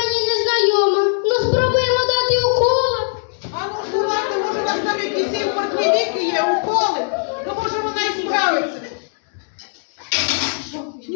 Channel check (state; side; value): silent; right; digital silence